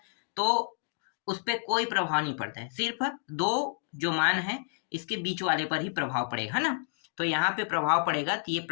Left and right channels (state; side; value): silent; right; digital silence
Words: तो उस पर कोई प्रभाव नहीं पड़ता है, सिर्फ दो जो मान है इसके बीच वाले पर ही प्रभाव पड़ेगा, है ना। तो यहाँ पे प्रभाव पड़ेगा, तो ये